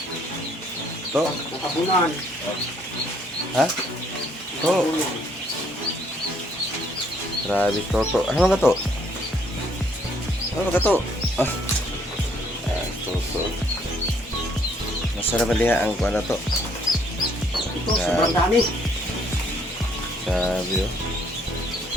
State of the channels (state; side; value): normal; both; correlation 0.66